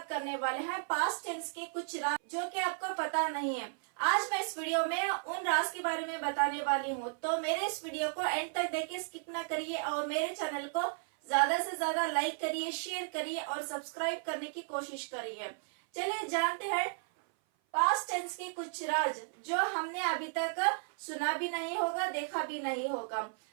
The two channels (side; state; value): left; silent; 55 dB below the other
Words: करने वाले हैं पास्ट टेंस के कुछ राज जो कि आपको पता नहीं है। आज मैं इस वीडियो में उन राज के बारे में बताने वाली हूँ, तो मेरे इस वीडियो को एंड तक देखिए, स्किप ना करिए और मेरे चैनल को ज्यादा से ज्यादा लाइक करिए, शेयर करिए और सब्सक्राइब करने की कोशिश करिए। चलिए जानते हैं पास्ट टेंस के कुछ राज जो हमने अभी तक सुना भी नहीं होगा, देखा भी नहीं होगा।